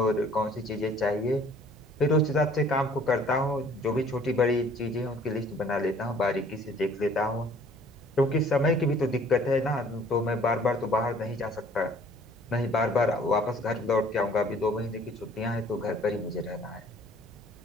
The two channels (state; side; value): normal; both; correlation 0.55